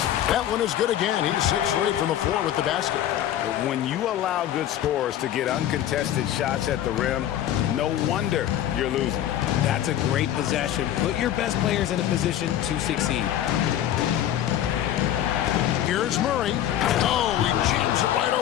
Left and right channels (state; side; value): quieter; right; 11.6 dB